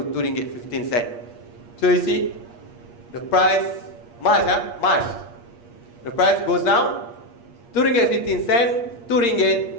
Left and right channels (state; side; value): late; right; 8.5 ms